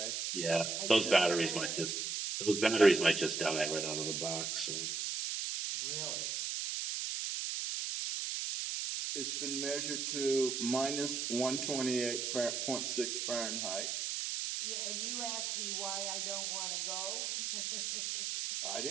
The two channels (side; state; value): right; noise; hiss, 2 dB below the sound